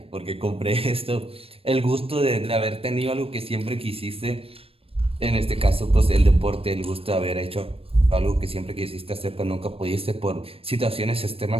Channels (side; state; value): left; late; 0.28 ms